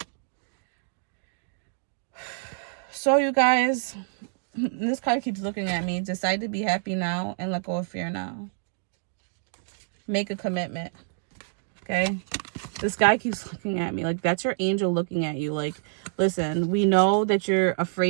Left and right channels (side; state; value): left; silent; digital silence